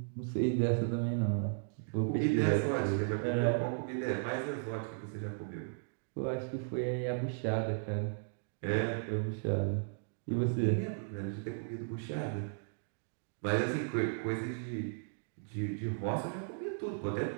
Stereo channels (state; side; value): silent; left; digital silence